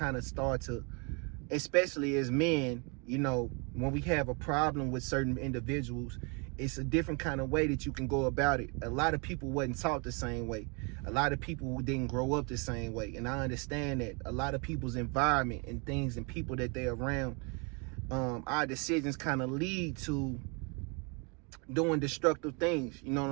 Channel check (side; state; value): left; quieter; 32.8 dB